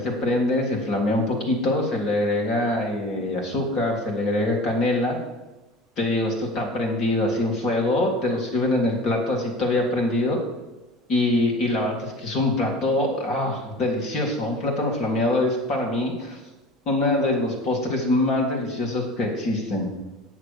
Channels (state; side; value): normal; both; correlation 0.39